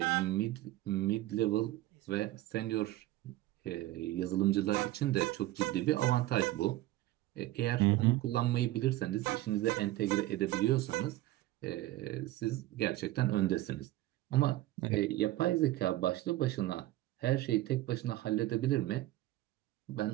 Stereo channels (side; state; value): left; quieter; 16.5 dB